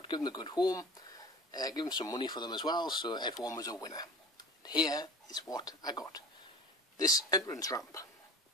give them a good home, give him some money for them as well, so everyone was a winner. And here is what I got. This entrance ramp,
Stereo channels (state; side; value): normal; both; correlation 0.40